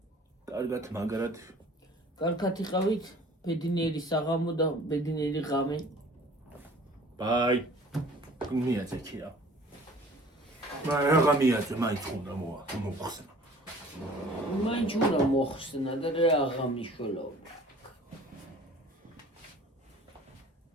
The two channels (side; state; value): both; normal; correlation 0.49